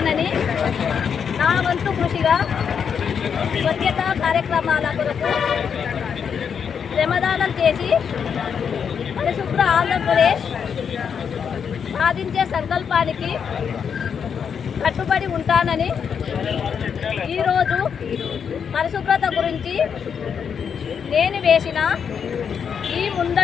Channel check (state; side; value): quieter; right; 7.1 dB